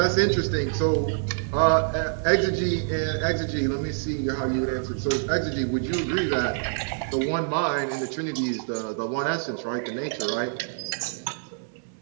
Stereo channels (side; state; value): left; silent; digital silence